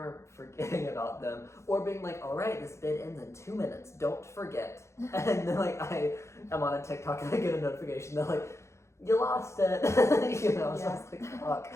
forgetting about them, or being like, all right, this bid ends in 2 minutes, don't forget. And then like I am on a TikTok and I get a notification that like, you lost it. You know, so I was like, fuck.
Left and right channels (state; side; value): late; right; 0.14 ms